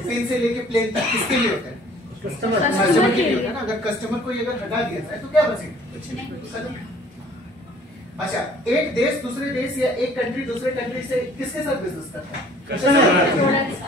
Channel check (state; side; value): normal; both; correlation 0.54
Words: से लेके प्लेन तक, किसके लिए होता है? कस्टमर के लिए होता है ना। अगर कस्टमर को अगर हटा दिया जाए तो क्या बचेगा? अच्छा, एक देश दूसरे देश या एक कंट्री दूसरे कंट्री से किसके साथ बिजनेस करता है?